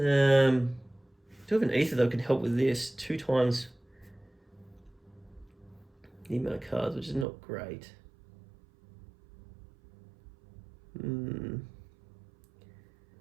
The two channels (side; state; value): left; drops out; at 7.2 s